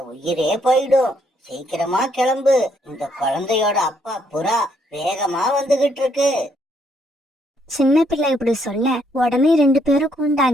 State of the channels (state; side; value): normal; both; correlation 0.71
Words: உயிரே போயிடும். சீக்கிரமா கிளம்பு, இந்த குழந்தையோட அப்பா புறா வேகமா வந்துகிட்டு இருக்கு. சின்ன பிள்ளை இப்படி சொல்ல உடனே 2 பேரும் கூண்டு